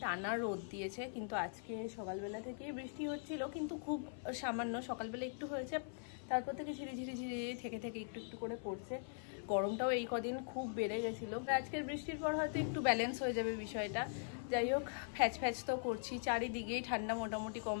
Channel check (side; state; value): right; silent; 50 dB below the other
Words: টানা রোদ দিয়েছে, কিন্তু আজকে সকালবেলা থেকে বৃষ্টি হচ্ছিল, কিন্তু খুব সামান্য। সকালবেলা একটু হয়েছে, তারপর থেকে ঝিরি ঝিরি ঝিরি থেকে একটু একটু করে পড়ছে। গরমটাও এই কদিন খুব বেড়ে গেছিলো। আজকের বৃষ্টির পর হয়তো একটু ব্যালেন্স হয়ে যাবে বিষয়টা। যাই হোক, ফ্যাচ ফ্যাচ তো করছি, চারিদিকেই ঠান্ডা মোটামুটি কম